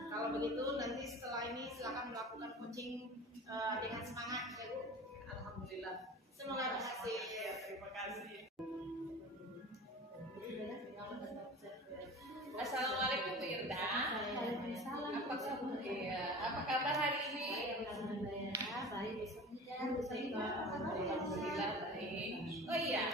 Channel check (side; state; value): both; normal; correlation 0.37